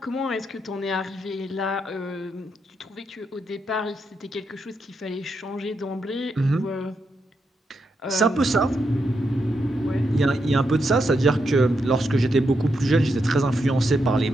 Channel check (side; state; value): both; normal; correlation 0.82